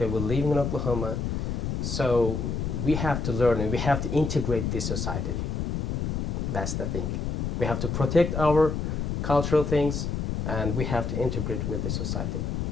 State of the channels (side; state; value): left; noise; rumble, 1 dB below the sound